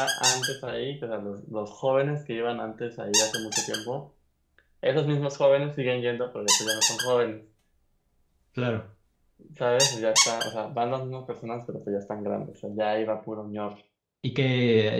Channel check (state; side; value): identical; both; correlation 1.00